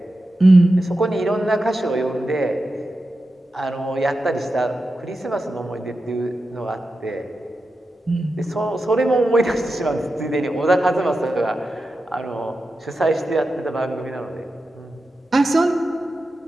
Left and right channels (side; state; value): both; normal; correlation 0.91